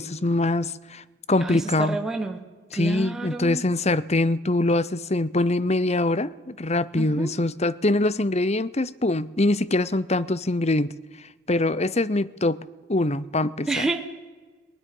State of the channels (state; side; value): normal; both; correlation 0.61